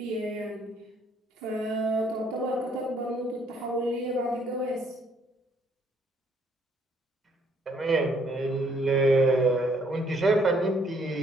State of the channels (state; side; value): normal; both; correlation 0.66